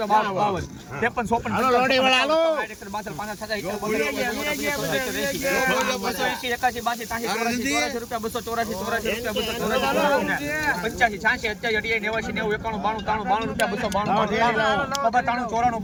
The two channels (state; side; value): identical; both; correlation 1.00